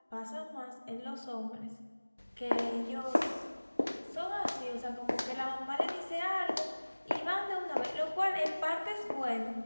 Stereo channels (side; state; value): both; inverted; correlation -1.00